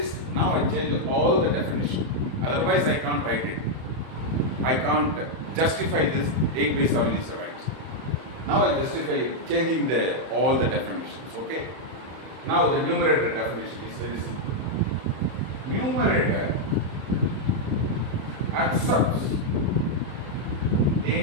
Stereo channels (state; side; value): late; left; 31 ms